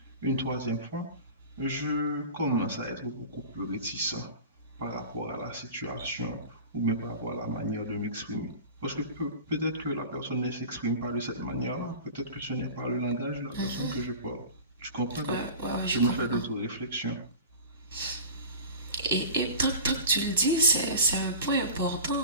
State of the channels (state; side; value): inverted; both; correlation -0.36